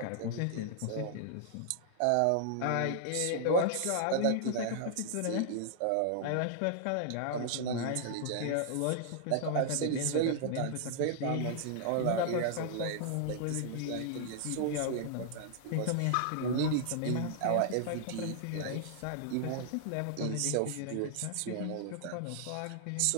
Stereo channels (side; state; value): both; different; correlation -0.01